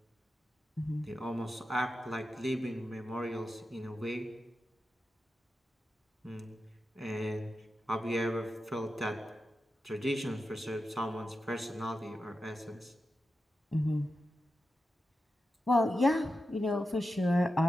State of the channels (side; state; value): both; normal; correlation 0.90